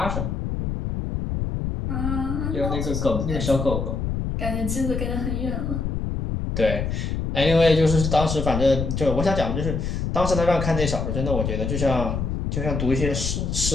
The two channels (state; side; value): noise; left; rumble, 2 dB below the sound